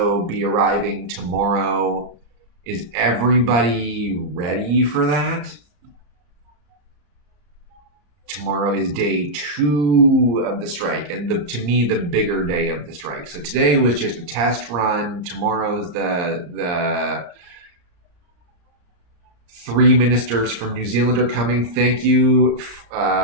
be arriving tomorrow. Is everybody ready for that? Tomorrow is day 2 of the strike, and to me, the bigger day of the strike. So today was just a test run. Tomorrow's the 3 ministers from New Zealand are coming. Thank you from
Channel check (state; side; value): late; left; 34 ms